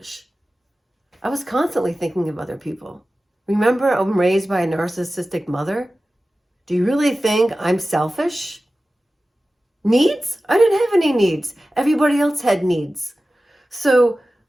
I was constantly thinking of other people. Remember, I'm raised by a narcissistic mother. Do you really think I'm selfish? Needs? I didn't have any needs. Everybody else had needs. So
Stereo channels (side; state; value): both; normal; correlation 0.95